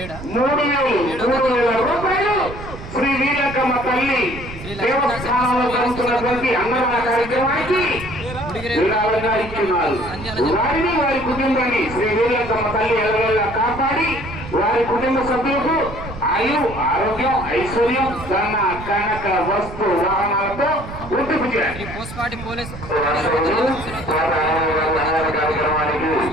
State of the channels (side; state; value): right; noise; rumble, 12 dB below the sound